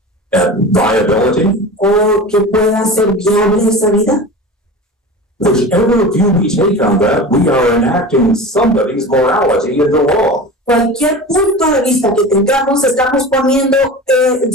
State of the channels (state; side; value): normal; both; correlation 0.32